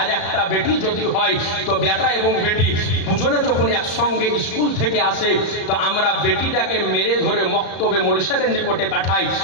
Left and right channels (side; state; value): right; late; 34 ms